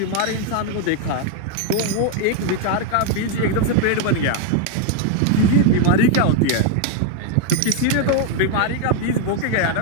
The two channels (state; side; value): different; both; correlation 0.01